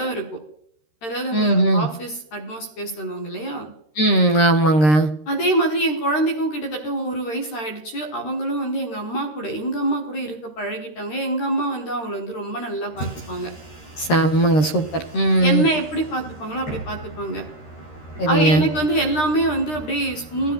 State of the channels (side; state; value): right; late; 13 ms